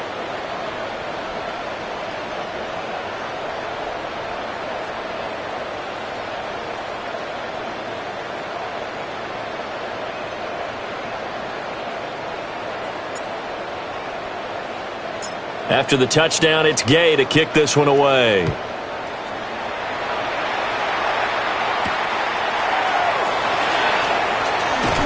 After the touchdown, it's Gay to kick this one away.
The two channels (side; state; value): both; identical; correlation 1.00